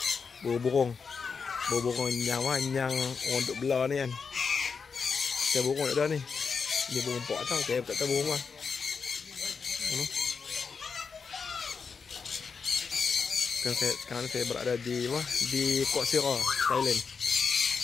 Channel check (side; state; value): right; quieter; 5.5 dB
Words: Burung-burung. Burung-burung yang orang duk belah ni kan. Saya burung tak ada ni. Dia burung pok tau. Saya tak tahu burung apa. Sekarang saya berada di Port Sira, Thailand.